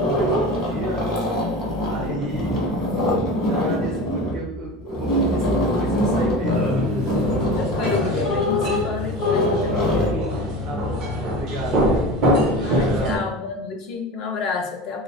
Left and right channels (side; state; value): both; normal; correlation 0.32